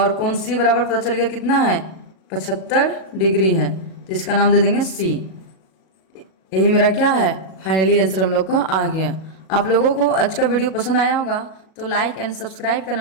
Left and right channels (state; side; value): late; right; 37 ms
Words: कोण सी बराबर पता चल गया कितना है, 75 डिग्री है। तो इसका नाम दे देंगे सी। यही मेरा क्या है, फाइनली आंसर हम लोग का आ गया। आप लोगों को आज का वीडियो पसंद आया होगा तो लाइक एंड सब्सक्राइब करना